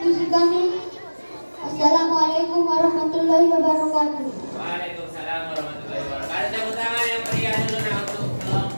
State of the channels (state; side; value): inverted; both; correlation -1.00